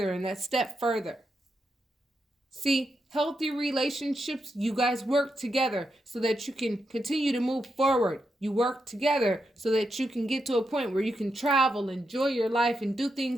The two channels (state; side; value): normal; both; correlation 0.84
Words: and that step further. See, healthy relationships, you guys work together so that you can continue to move forward. You work together so that you can get to a point where you can travel, enjoy your life, and do